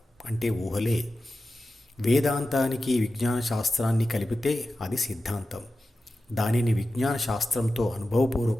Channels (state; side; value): normal; both; correlation 0.93